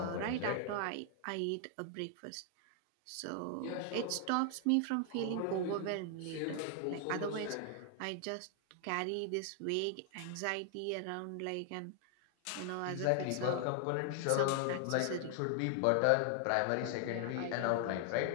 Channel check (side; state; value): both; different; correlation 0.00